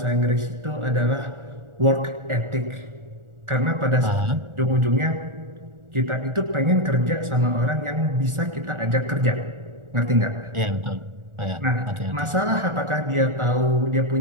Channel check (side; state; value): left; late; 1.4 ms